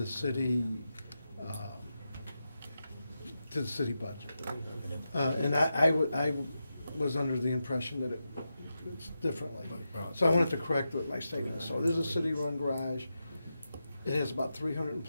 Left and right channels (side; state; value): both; inverted; correlation -0.89